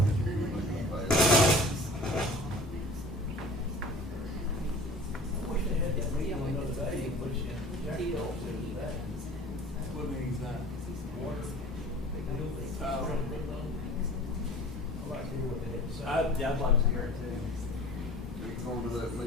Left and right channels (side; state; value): both; normal; correlation 0.44